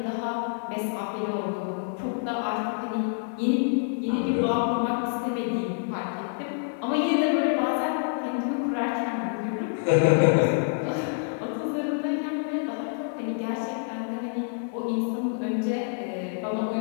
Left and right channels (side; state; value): right; silent; digital silence